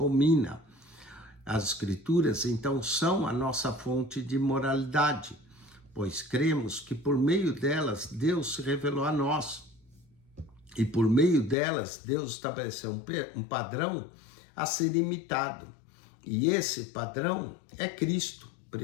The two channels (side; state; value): right; drops out; at 11.6 s